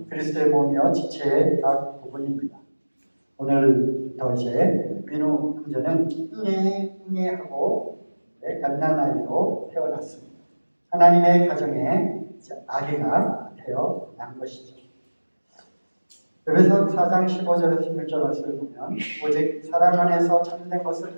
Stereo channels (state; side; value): inverted; both; correlation -1.00